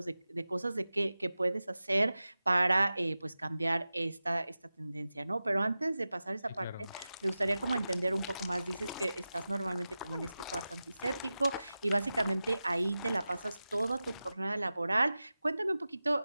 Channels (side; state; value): both; inverted; correlation -0.94